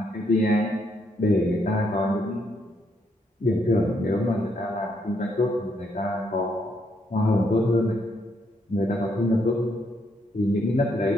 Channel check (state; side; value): normal; both; correlation 0.75